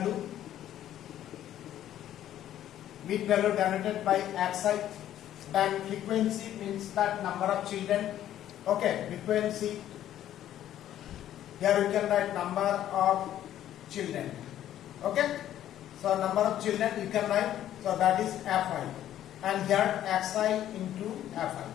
denoted by xi, then frequency means that number of children. Okay, frequency, here you can write number of children. Okay, so number of children you can write, so that is fi, and here xi into fi.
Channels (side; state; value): right; quieter; 11.8 dB